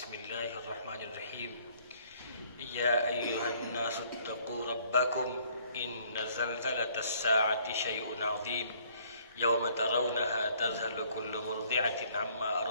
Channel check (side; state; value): both; inverted; correlation -0.61